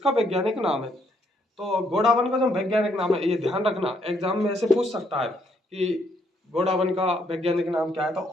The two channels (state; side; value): normal; both; correlation 0.71